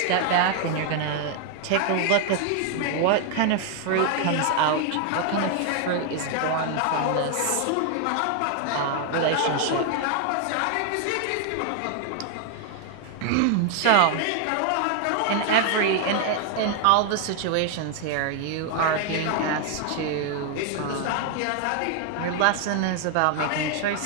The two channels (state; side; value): different; both; correlation 0.00